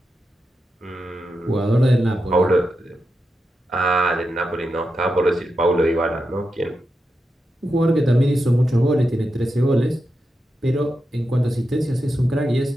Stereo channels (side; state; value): both; normal; correlation 0.88